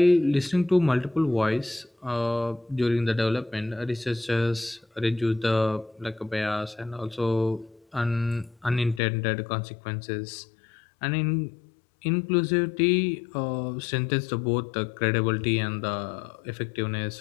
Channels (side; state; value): right; drops out; at 9.0 s